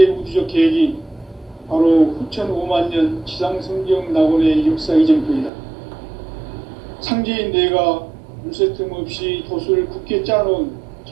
우주적 계획이 바로 후천 5만 년 지상성경 낙원의 역사 이정표이다. 상제인 내가 물새틈 없이 도수를 굳게 짜놓은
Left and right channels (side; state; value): left; drops out; at 5.5 s